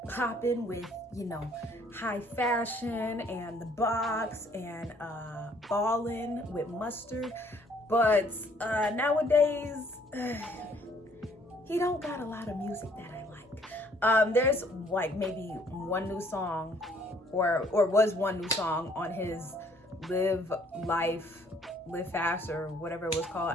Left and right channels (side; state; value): both; normal; correlation 0.62